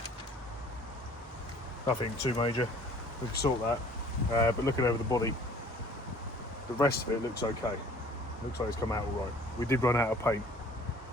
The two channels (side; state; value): both; normal; correlation 0.52